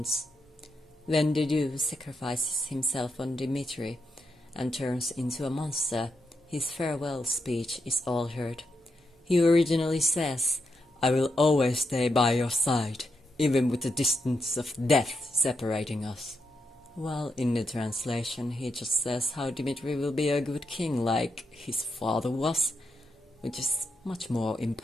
When Dedue sacrifices himself on Dimitri and turns into a monster, his farewell speech is altered. He originally says, "I will always stay by your side, even with the distance of death separating us." While in the translation he just says how Dimitri will be a good king like his father was, which is much more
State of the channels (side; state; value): both; normal; correlation 0.83